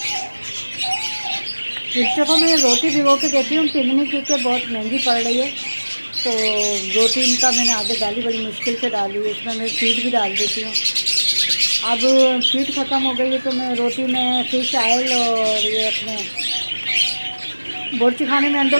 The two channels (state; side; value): inverted; both; correlation -1.00